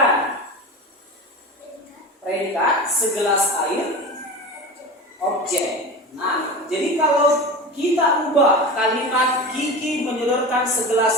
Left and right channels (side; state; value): both; normal; correlation 0.29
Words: predikat segelas air, objek. Nah, jadi kalau kita ubah kalimat Kiki menyodorkan